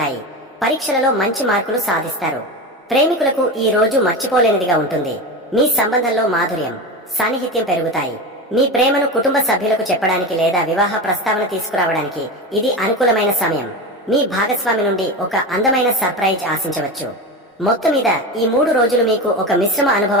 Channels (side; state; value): both; normal; correlation 0.23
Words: పరీక్షలలో మంచి మార్కులు సాధిస్తారు. ప్రేమికులకు ఈ రోజు మర్చిపోలేనిదిగా ఉంటుంది. మీ సంబంధంలో మాధుర్యం, సాన్నిహిత్యం పెరుగుతాయి. మీ ప్రేమను కుటుంబ సభ్యులకు చెప్పడానికి లేదా వివాహ ప్రస్తావన తీసుకురావడానికి ఇది అనుకూలమైన సమయం. మీ భాగస్వామి నుండి ఒక అందమైన సర్ప్రైజ్ ఆశించవచ్చు. మొత్తం మీద ఈ 3 రోజులు మీకు ఒక మిశ్రమ